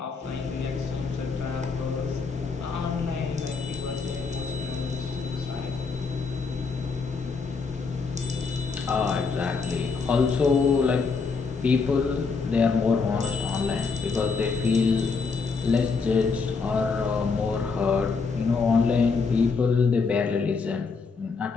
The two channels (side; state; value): right; quieter; 4.8 dB